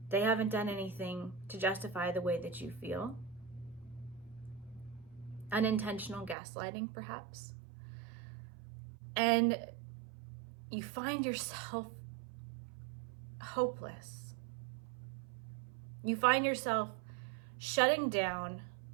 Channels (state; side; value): drops out; left; at 6.4 s